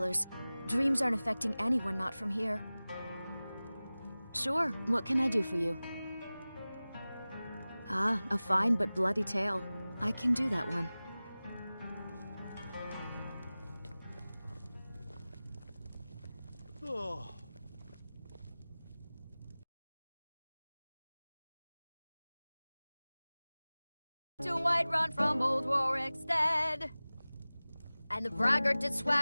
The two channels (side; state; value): both; inverted; correlation -0.98